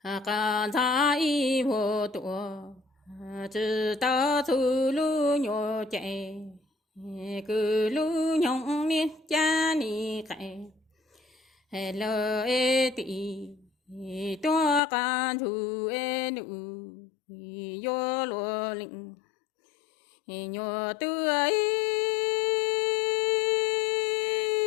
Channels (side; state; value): right; drops out; at 14.8 s